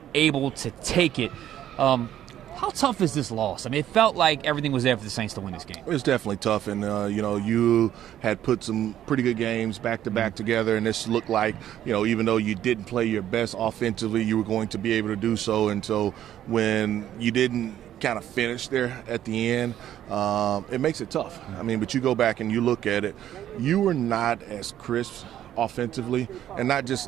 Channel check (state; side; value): quieter; left; 11.5 dB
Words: able to take it. How tough is this loss? I mean, it felt like everything was there for the Saints to win this game. It's definitely tough, and you had put some pretty good games back to back together, and this looked like, even though you didn't play your best offensively, you were going to be able to do so. And so when you didn't kind of finish there at the end, it makes it tough. I mean, but you go back and you look at it, you were not as crisp offensively, and not